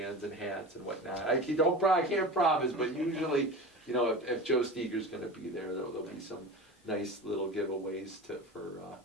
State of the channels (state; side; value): normal; both; correlation 0.31